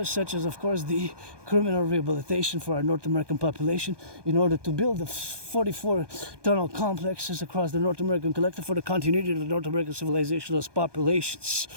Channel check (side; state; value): left; late; 1.2 ms